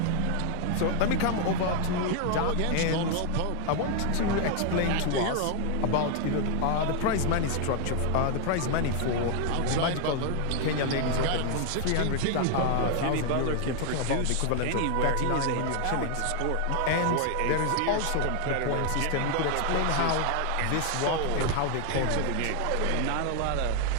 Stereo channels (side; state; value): both; different; correlation 0.00